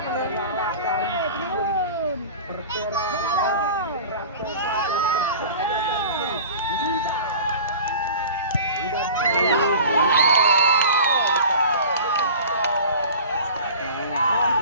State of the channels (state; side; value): inverted; both; correlation -0.39